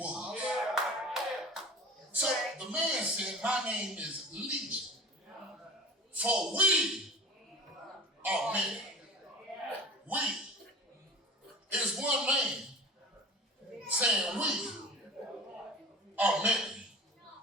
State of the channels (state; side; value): normal; both; correlation 0.38